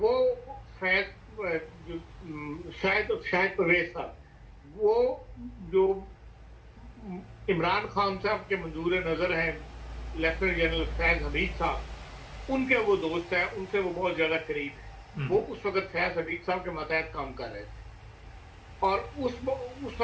शायद परवेज साहब, वो जो इमरान खान साहब के मंजूर नजर हैं, लेफ्टिनेंट जनरल फैज हमीद साहब, उनके वो दोस्त हैं, उनसे वो बहुत ज्यादा करीब है। वो उस वक्त फैज हमीद साहब के मतहत काम कर रहे थे, और उस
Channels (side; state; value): both; identical; correlation 1.00